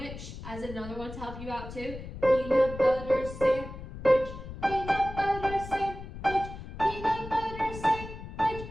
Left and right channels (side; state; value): left; noise; rumble, 11 dB below the sound